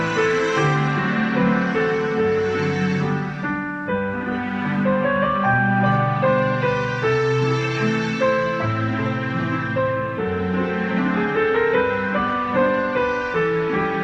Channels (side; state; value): both; identical; correlation 1.00